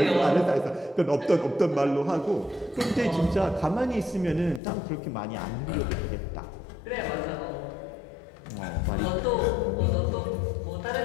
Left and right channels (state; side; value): drops out; right; at 4.6 s